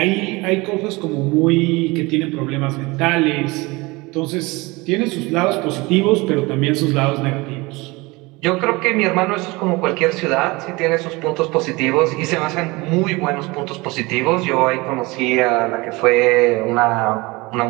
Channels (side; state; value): left; quieter; 23.6 dB